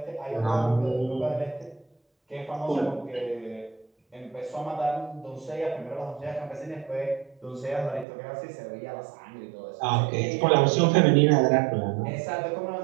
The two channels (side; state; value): left; drops out; at 8.1 s